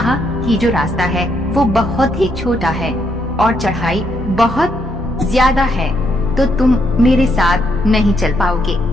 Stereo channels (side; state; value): both; normal; correlation 0.75